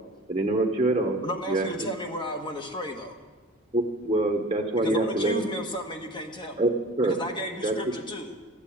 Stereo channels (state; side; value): normal; both; correlation 0.41